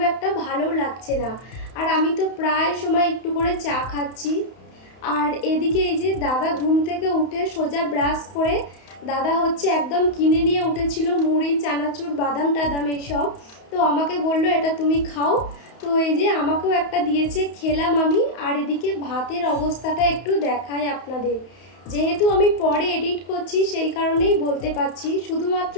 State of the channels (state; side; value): late; right; 31 ms